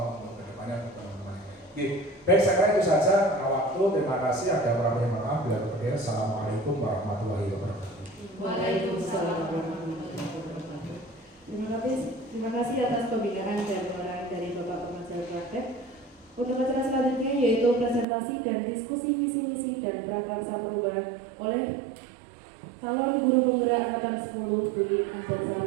untuk kedepannya untuk teman-teman. Baik, saya kira itu saja karena waktu. Terima kasih. Ada beberapa yang maaf. Bila berkenan, assalamualaikum warahmatullahi wabarakatuh. Waalaikumsalam warahmatullahi wabarakatuh. Terima kasih atas pembinaan dan pengarahan dari Bapak Pengajar Praktek. Untuk acara selanjutnya yaitu presentasi dan diskusi visi misi dan prakarsa perubahan oleh calon guru penggerak angkatan 10 Budi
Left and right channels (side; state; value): left; drops out; at 18.1 s